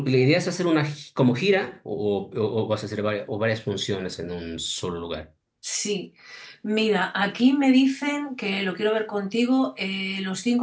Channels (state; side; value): identical; both; correlation 1.00